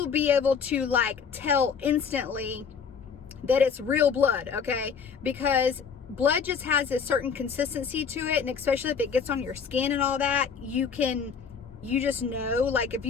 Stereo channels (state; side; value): quieter; right; 6.3 dB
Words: be able to, like, tell instantly that it's real blood, okay? Because blood just has a certain consistency to it, and especially if it gets on your skin and all that, you just know, like, if